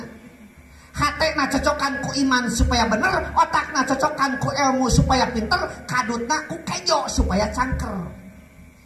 hatena cocokan ku iman supaya bener otakna cocokan ku ilmu supaya pinter kadutna ku kejo supaya cangker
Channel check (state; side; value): identical; both; correlation 1.00